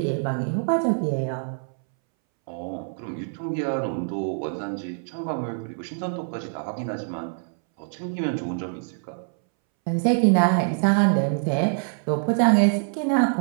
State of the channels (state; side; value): silent; left; 62 dB below the other